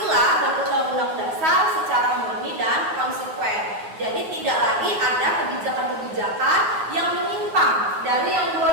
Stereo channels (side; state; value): left; late; 9.4 ms